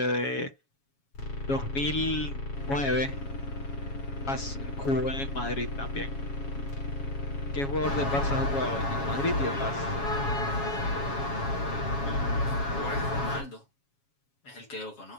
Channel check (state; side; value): late; right; 7.2 ms